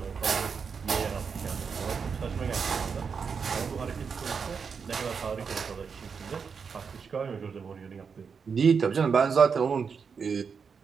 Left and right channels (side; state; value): left; quieter; 5.9 dB